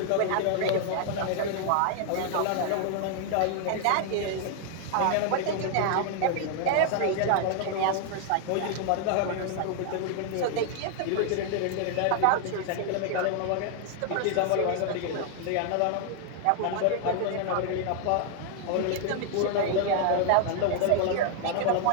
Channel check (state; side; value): different; both; correlation 0.00